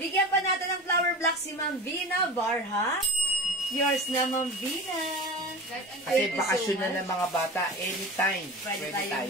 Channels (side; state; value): both; normal; correlation 0.32